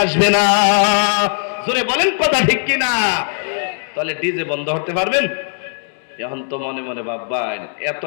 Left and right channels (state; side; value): silent; right; digital silence